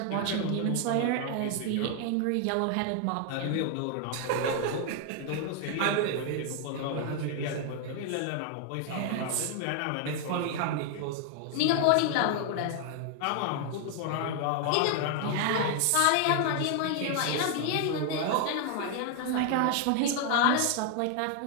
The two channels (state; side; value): different; both; correlation 0.00